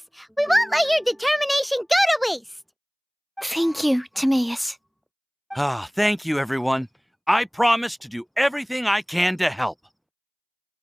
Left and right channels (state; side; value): identical; both; correlation 1.00